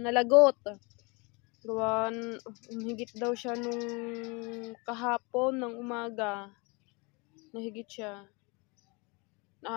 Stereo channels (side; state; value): right; quieter; 29.3 dB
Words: Gawan, higit daw siya nung kahapon ng umaga. Nahigit siya.